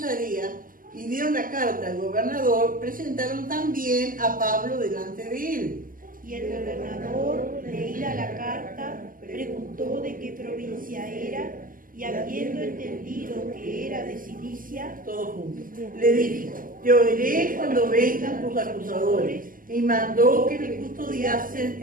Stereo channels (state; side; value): late; left; 0.40 ms